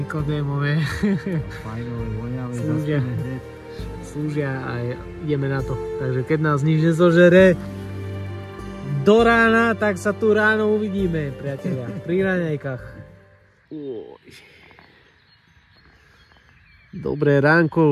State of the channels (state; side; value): identical; both; correlation 1.00